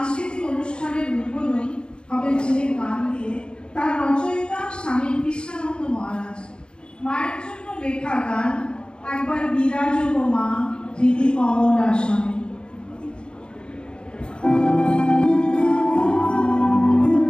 অনুষ্ঠানের উদ্বোধন হবে যে গান দিয়ে, তার রচয়িতা স্বামী কৃষ্ণানন্দ মহারাজ। মায়ের জন্য লেখা গান একবার বিরাজ গো মা হৃদি কমল আসনে।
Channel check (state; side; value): late; right; 0.052 ms